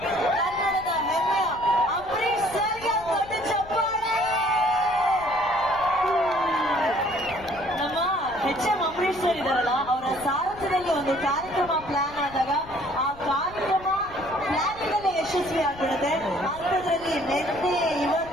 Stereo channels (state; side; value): noise; left; rumble, 19 dB below the sound